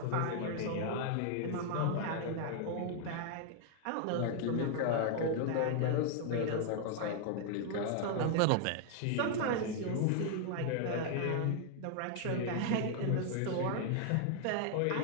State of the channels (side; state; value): both; different; correlation 0.00